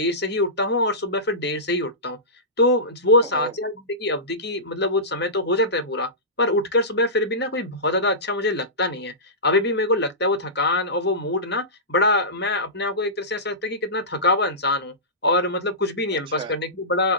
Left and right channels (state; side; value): normal; both; correlation -0.18